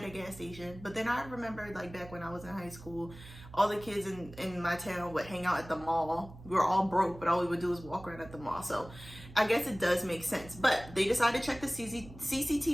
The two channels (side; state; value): right; noise; hum, 17 dB below the sound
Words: a gas station. But then I remembered, like, back when I was in high school, all the kids in my town would hang out at the mall. We were all broke, but all we would do was walk around at the mall. So I guess it does make sense. But they decided to check the